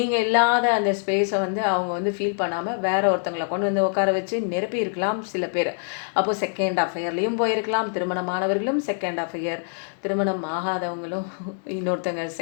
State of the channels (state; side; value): silent; right; 62 dB below the other